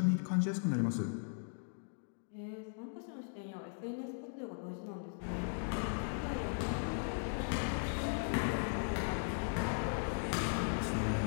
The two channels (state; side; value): silent; right; digital silence